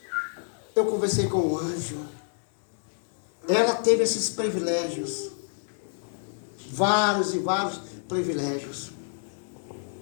Eu conversei com o anjo. Ela teve esses privilégios. Vários e vários privilégios.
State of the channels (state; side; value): silent; right; digital silence